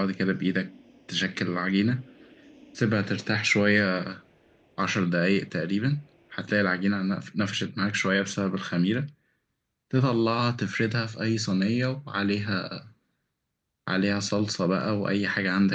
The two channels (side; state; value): both; identical; correlation 1.00